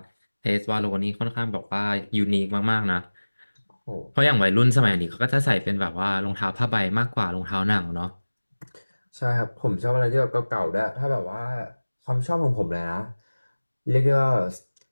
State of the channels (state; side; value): inverted; both; correlation -1.00